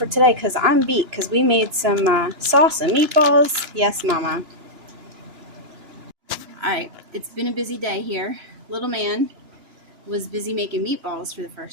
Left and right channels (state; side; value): late; left; 2.9 ms